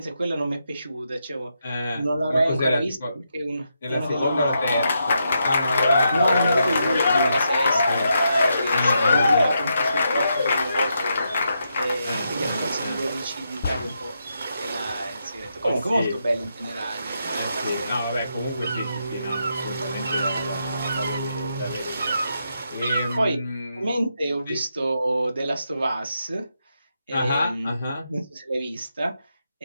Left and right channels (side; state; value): both; inverted; correlation -0.82